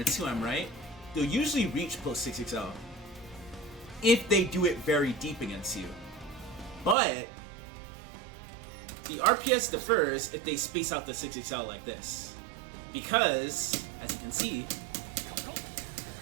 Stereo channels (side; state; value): left; drops out; at 7.0 s